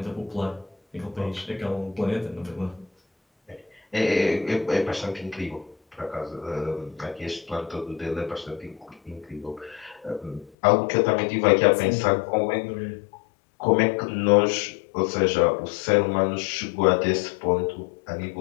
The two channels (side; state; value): right; drops out; at 10.5 s